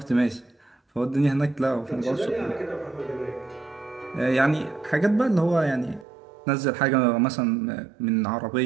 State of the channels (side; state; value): left; drops out; at 6.1 s